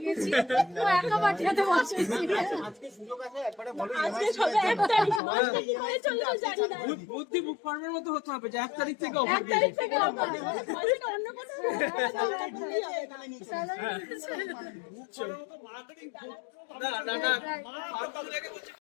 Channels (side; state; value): right; drops out; at 5.2 s